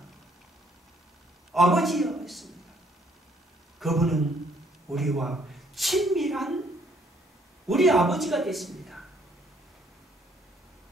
아버지여 했습니다. 그분은 우리와 친밀한 우리 아버지가 됐습니다.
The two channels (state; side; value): normal; both; correlation 0.65